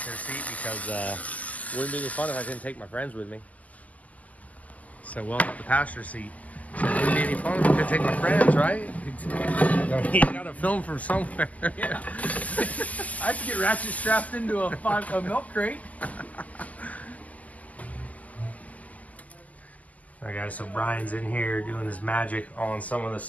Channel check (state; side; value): late; right; 0.076 ms